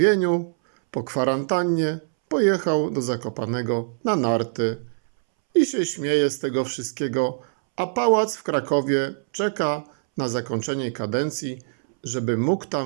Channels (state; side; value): silent; left; 63 dB below the other